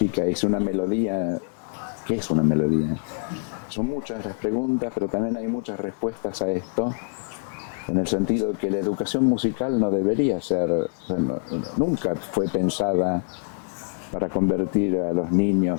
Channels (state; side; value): silent; right; 62 dB below the other